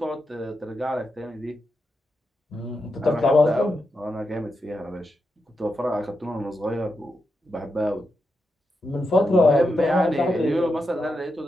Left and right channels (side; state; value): both; normal; correlation 0.86